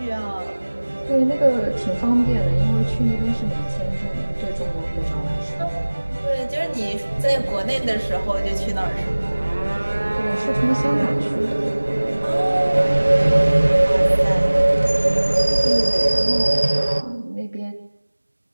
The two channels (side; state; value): both; inverted; correlation -1.00